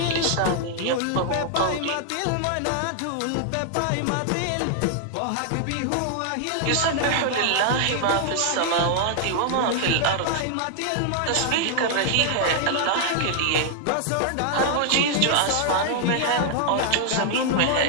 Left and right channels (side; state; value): both; different; correlation 0.00